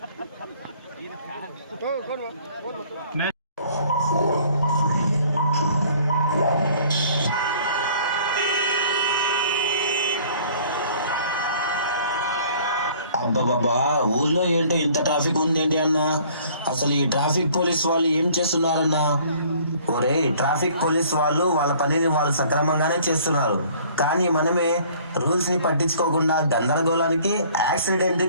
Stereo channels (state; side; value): inverted; both; correlation -0.54